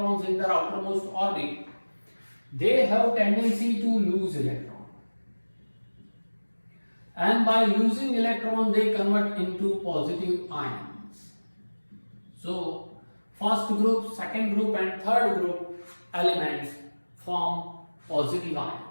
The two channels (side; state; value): both; inverted; correlation -1.00